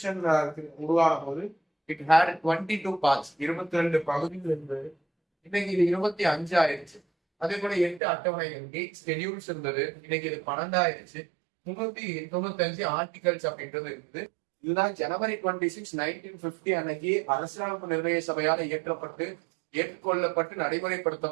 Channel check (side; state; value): left; drops out; at 8.0 s